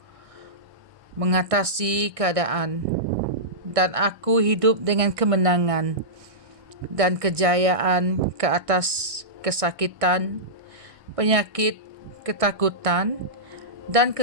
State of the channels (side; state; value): left; late; 1.6 ms